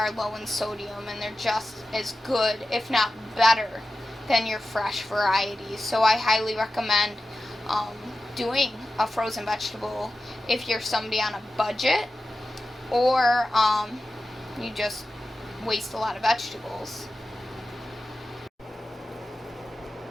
low in sodium, and they're just as good, if not better, than your fresh variety. So I highly recommend doing a frozen vegetable if you're somebody on a budget, or you just waste a lot of vegetables.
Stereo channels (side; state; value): both; normal; correlation 0.93